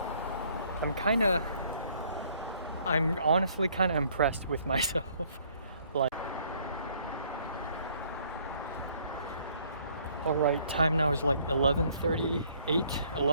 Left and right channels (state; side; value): inverted; both; correlation -0.62